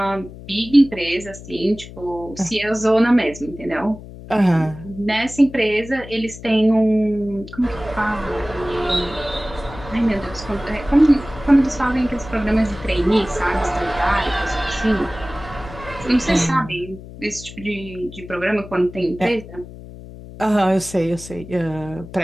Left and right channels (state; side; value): noise; left; hum, 15 dB below the sound